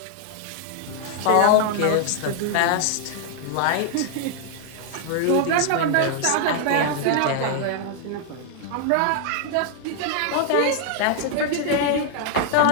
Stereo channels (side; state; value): both; different; correlation -0.01